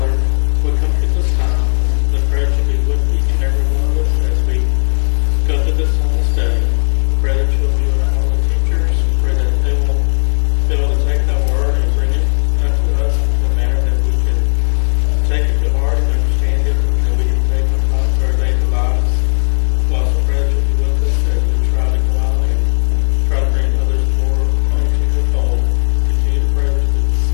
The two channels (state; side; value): silent; right; digital silence